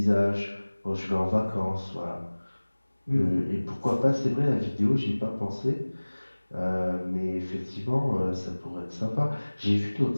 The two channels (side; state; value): both; inverted; correlation -1.00